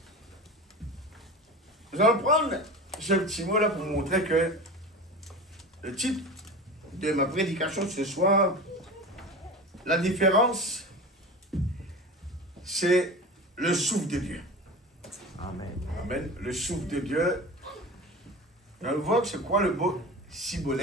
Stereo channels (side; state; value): both; normal; correlation 0.31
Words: Nous allons prendre ce petit mot là pour montrer que le titre de ma prédication ce soir, la différence, c'est le souffle de Dieu. Amen. Amen. Le souffle de Dieu. On va voir que c'est quoi le mot